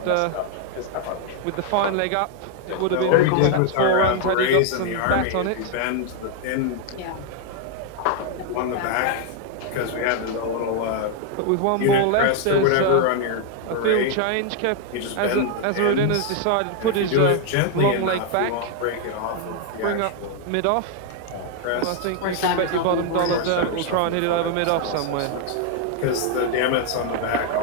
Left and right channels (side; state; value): both; different; correlation 0.00